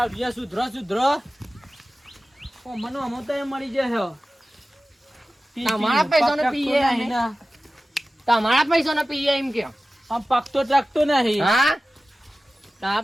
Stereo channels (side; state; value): both; normal; correlation 0.96